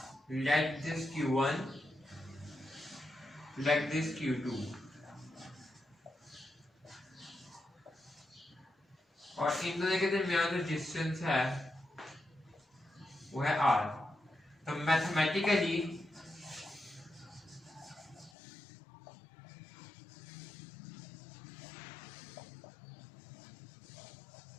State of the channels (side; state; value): right; drops out; at 18.3 s